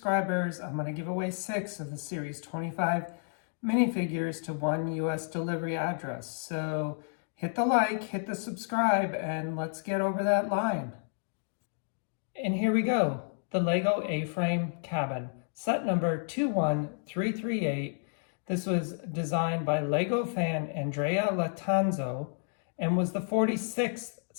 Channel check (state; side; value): silent; right; digital silence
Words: I'm going to give away 6 of the series 25 minifigures to one US delivery address. So hit the like, hit the subscribe, and let's get over that line. And here we go, the Lego A-Frame Cabin, set number 21338. This was designed by Lego fan Andrea Latanzo and was the 46th